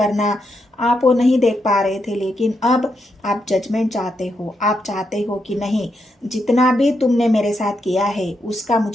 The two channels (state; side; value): normal; both; correlation 0.82